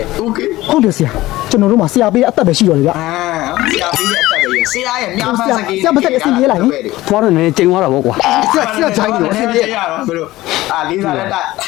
့ okay ဟုတ်တယ်ဆရာကျွန်တော်တို့မှာဆရာပေးအသက်ပဲရှိတော်လေဗျ ဆရာပေးတဲ့အသက်ပဲဆရာရဲ့မြောက်ဖန်းစကေး ဆရာမသက်အစင်ပြေးလိုက်သွားတော့လည်းကျိန်သွားတာပေါ့ကွာဆရာဂျိုင်းလို့အစင်ပြေးရတော့ဘယ်လိုလေးစားလက်တက်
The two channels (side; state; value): right; quieter; 17.3 dB